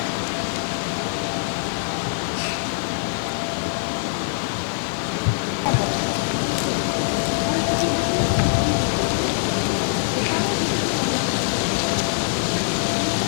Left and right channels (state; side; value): silent; right; digital silence